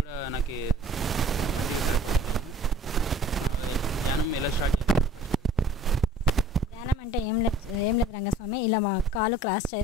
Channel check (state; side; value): normal; both; correlation 0.50